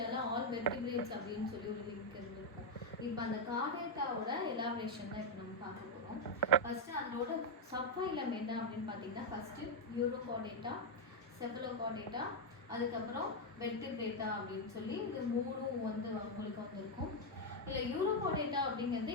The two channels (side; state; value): both; normal; correlation 0.01